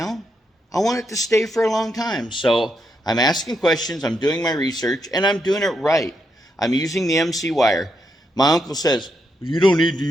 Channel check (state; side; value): normal; both; correlation 0.81